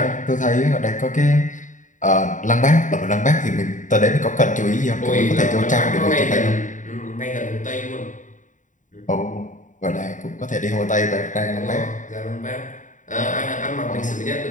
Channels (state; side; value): late; right; 0.37 ms